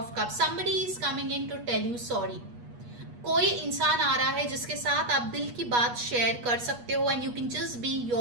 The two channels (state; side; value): late; left; 8.3 ms